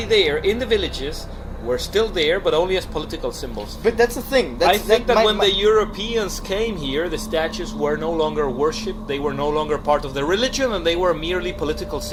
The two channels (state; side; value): identical; both; correlation 1.00